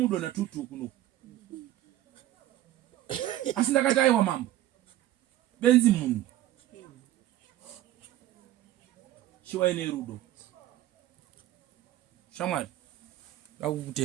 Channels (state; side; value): quieter; left; 14.0 dB